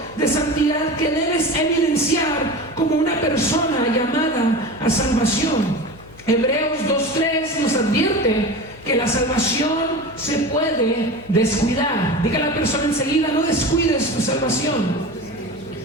de santidad que debes evidenciar como una persona llamada a salvación. Hebreos 2:3 nos advierte que la salvación se puede descuidar. Diga a la persona enseguida: no descuides tu salvación.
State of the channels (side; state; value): left; noise; hum, 23 dB below the sound